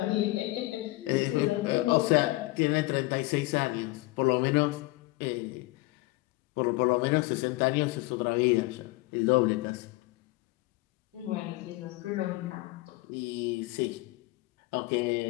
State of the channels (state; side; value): quieter; right; 21.2 dB